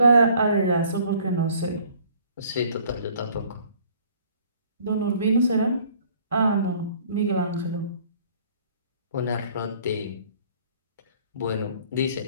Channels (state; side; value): inverted; both; correlation -0.56